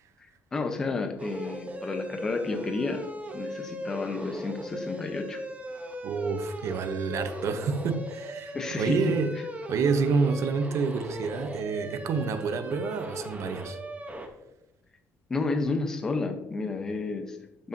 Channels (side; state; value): both; normal; correlation 0.68